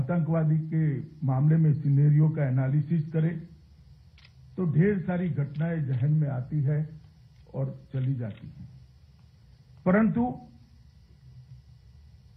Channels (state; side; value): identical; both; correlation 1.00